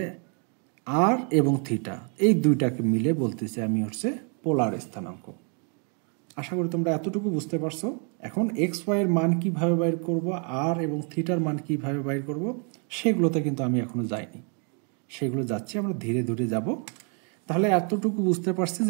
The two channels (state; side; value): quieter; left; 39.5 dB